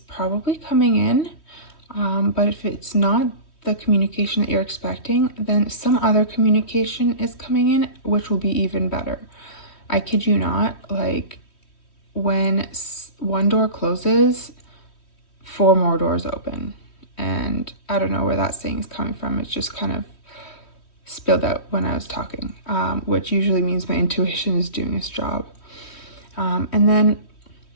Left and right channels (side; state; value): right; late; 3.1 ms